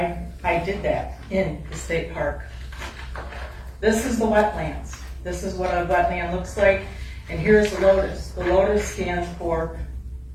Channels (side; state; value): both; identical; correlation 1.00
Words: did that in the state park. This is the wetlands. This is what a wetland looks like, and here's the lotus. The lotus stands for,